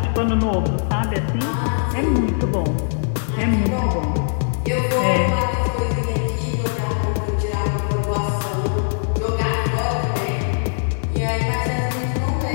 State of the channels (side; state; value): right; silent; digital silence